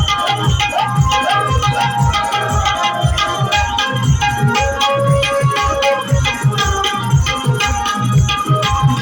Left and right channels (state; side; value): identical; both; correlation 1.00